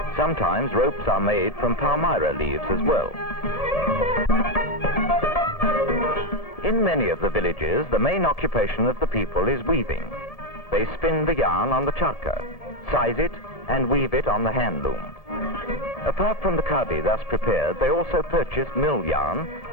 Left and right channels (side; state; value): right; late; 1.7 ms